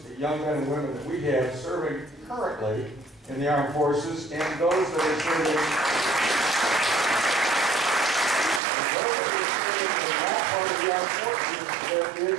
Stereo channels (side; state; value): left; drops out; at 8.6 s